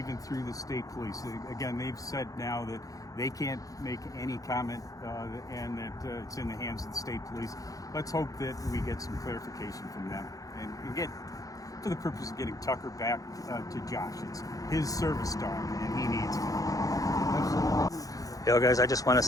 through the state police. Again, they've said now that they can't make any comment, and that it's in the hands of the state police. Let's hope that we get some clarification from them, and get, for the purpose of getting Tucker back to Josh. It's his service dog, and he needs it. Yo, guys, I just want to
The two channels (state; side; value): late; right; 0.17 ms